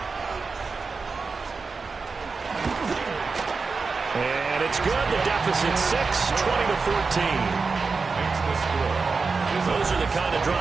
And it's good. The deficit 6, 20-14. Those are the kind of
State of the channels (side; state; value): left; quieter; 4.5 dB